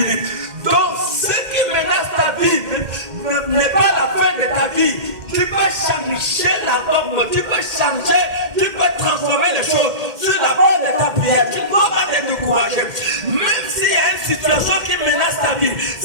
Donc, ce qui menace ta vie n'est pas la fin de ta vie. Tu peux changer la norme, tu peux changer, tu peux transformer les choses sur la base de ta prière. Tu ne dois pas te décourager. Même s'il y a une situation qui menace ta vie,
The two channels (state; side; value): late; left; 2.1 ms